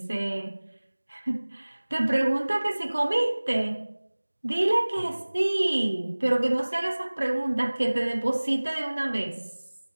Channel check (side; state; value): both; inverted; correlation -1.00